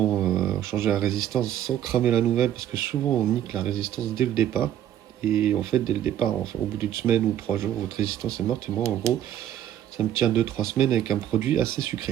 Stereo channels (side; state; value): left; quieter; 11.1 dB